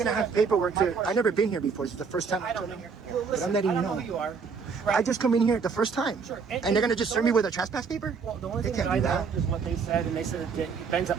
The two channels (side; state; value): left; quieter; 5.5 dB